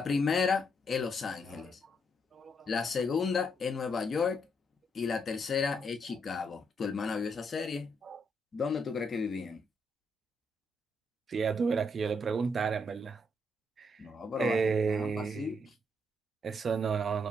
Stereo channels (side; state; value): both; normal; correlation 0.76